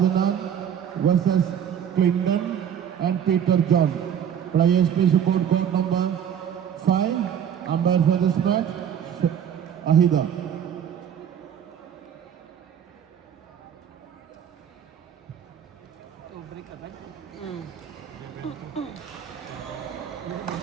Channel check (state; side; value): quieter; left; 8.8 dB